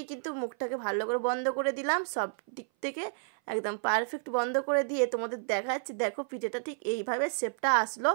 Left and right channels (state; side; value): silent; left; 57 dB below the other